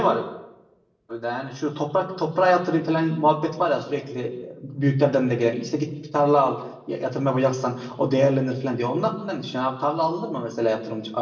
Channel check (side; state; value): both; identical; correlation 1.00